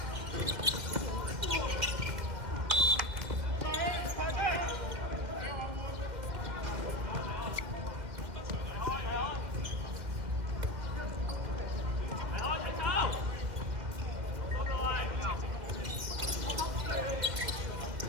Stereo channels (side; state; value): left; late; 2.1 ms